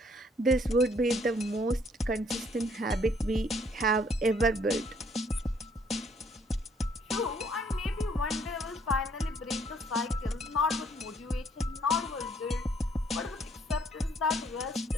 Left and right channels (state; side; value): normal; both; correlation 0.65